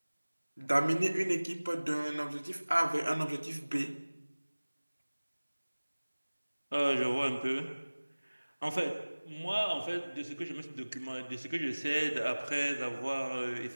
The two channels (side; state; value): both; inverted; correlation -1.00